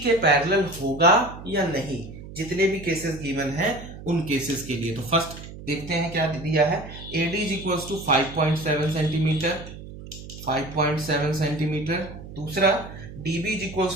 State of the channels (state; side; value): noise; right; hum, 13 dB below the sound